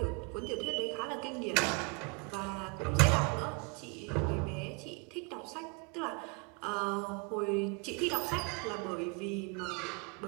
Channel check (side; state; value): left; quieter; 31.8 dB